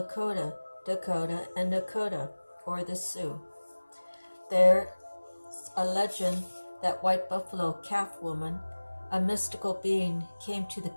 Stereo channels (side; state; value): both; inverted; correlation -1.00